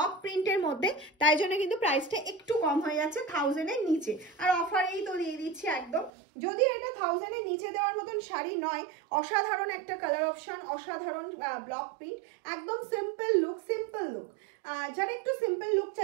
প্রিন্টের মধ্যে, তাই জন্য কিন্তু প্রাইসটা একটু কম হয়ে যাচ্ছে 1000-এর নিচে। আর অফারেই তো দিয়ে দিচ্ছি একদম। যদিও এটা 1000-এর নিচে দেওয়ার মতন শাড়ি নয়, অসাধারণ একটা কালার অপশন, অসাধারণ ব্লক প্রিন্ট, একদম সিম্পল লুক। সিম্পল লুক যারা একটু সিম্পল লুক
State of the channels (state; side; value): drops out; left; at 6.1 s